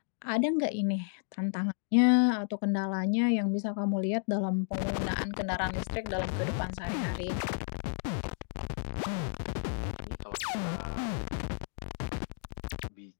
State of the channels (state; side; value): silent; right; digital silence